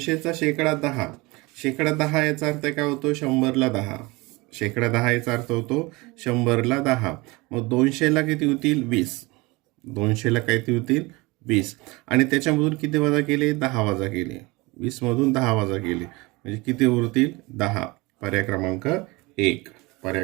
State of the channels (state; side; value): quieter; left; 23.8 dB